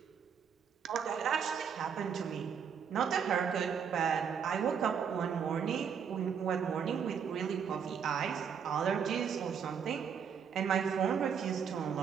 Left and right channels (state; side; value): quieter; left; 7.2 dB